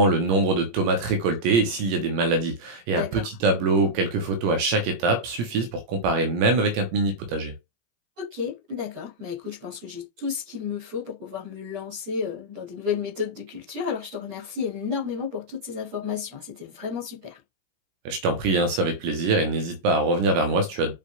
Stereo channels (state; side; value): late; left; 17 ms